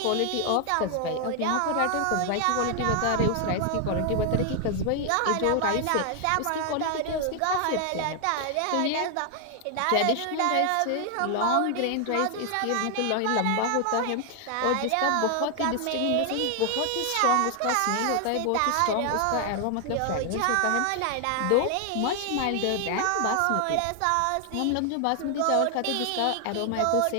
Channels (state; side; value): different; both; correlation 0.00